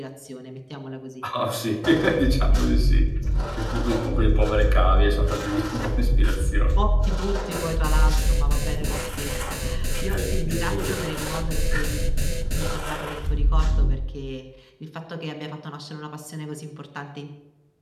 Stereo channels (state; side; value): identical; both; correlation 1.00